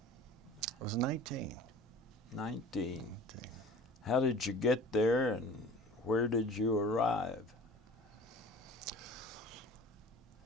I was 19. 19. How did you get there and where did you arrive?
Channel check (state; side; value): normal; both; correlation 0.42